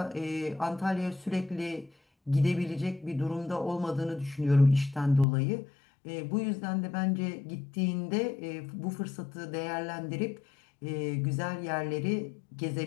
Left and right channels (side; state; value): right; drops out; at 5.2 s